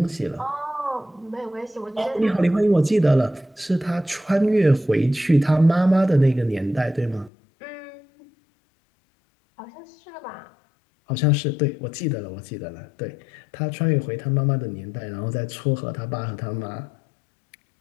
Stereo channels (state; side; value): drops out; right; at 7.3 s